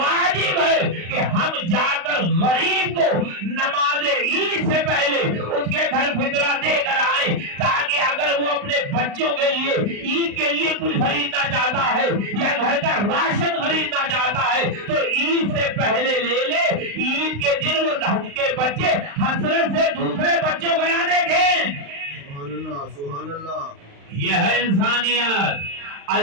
ہے کہ ہم جا کر غریب کو نماز عید سے پہلے اس کے گھر فطرہ دے کر آئے، تاکہ اگر وہ اپنے بچوں کے لیے عید کے لیے کچھ خریدنا چاہتا ہے یا گھر کا راشن خریدنا چاہتا ہے تو عید سے پہلے لے لے، عید کے دن وہ کے بچے حسرت سے دوسرے بچوں کو نہ دیکھیں۔ سبحان اللہ، سبحان اللہ۔ یہ ہے انسانیت۔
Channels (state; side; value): late; left; 35 ms